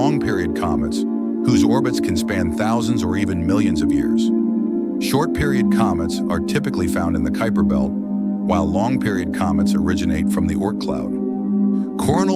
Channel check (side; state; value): both; identical; correlation 1.00